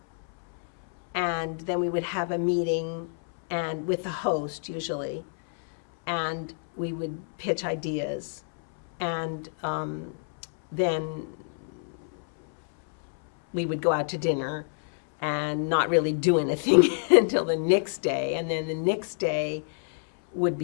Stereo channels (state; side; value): silent; right; 60 dB below the other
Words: And then we would have a meeting and with the host usually, and we would pitch ideas. And then we would go out to dinner and not really do anything until the next day. And then the next day would